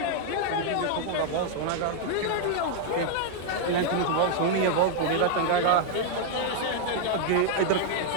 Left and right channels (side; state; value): both; different; correlation 0.00